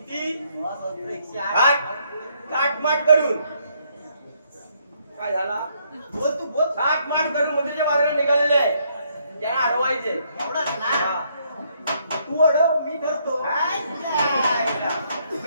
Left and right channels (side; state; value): both; inverted; correlation -0.71